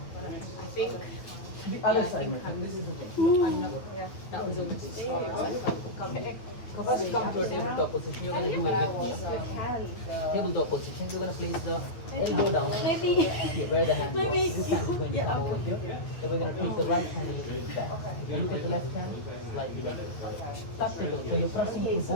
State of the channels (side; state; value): right; late; 8.7 ms